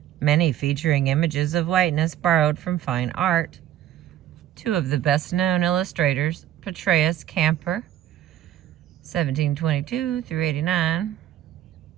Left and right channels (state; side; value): quieter; left; 11.9 dB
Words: many featuring images of whiteness borrowed from fine art. Two of the best-known illustrators, Petrus Camper, 1722 through 89,